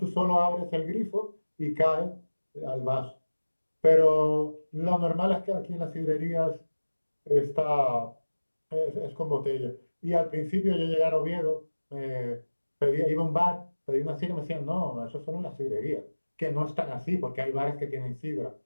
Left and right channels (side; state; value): both; inverted; correlation -1.00